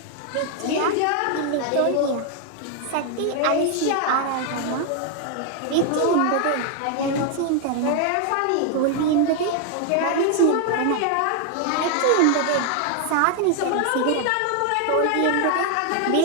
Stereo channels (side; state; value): both; different; correlation 0.00